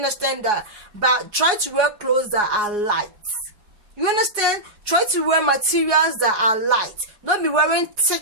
But try to wear clothes that are light. You understand? Try to wear materials that are light. Don't be wearing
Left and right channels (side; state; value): left; late; 4.8 ms